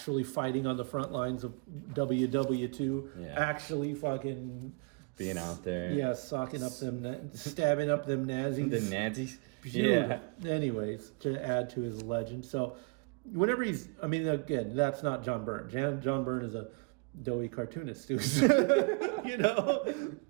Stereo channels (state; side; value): quieter; left; 34.0 dB